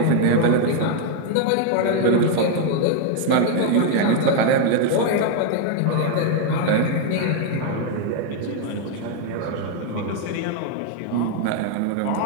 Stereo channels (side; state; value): both; different; correlation 0.00